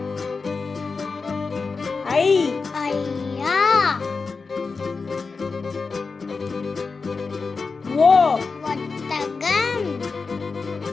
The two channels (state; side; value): quieter; right; 4.5 dB